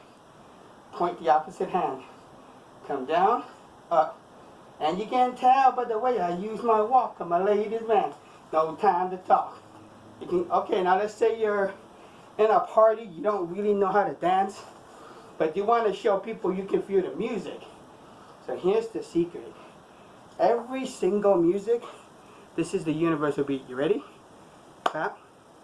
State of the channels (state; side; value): identical; both; correlation 1.00